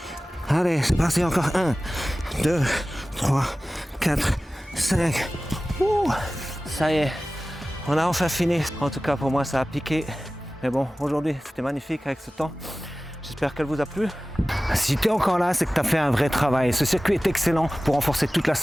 Allez, c'est parti, encore 1, 2, 3, 4, 5. Ça y est, on a enfin fini. En tout cas, pour moi, ça a piqué. Mais bon, aujourd'hui, c'était magnifique avec ce temps. J'espère qu'elle vous a plu. Si tu es encore là, c'est que tu as fait un vrai travail. Ce circuit est excellent pour renforcer toute la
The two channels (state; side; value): normal; both; correlation 0.97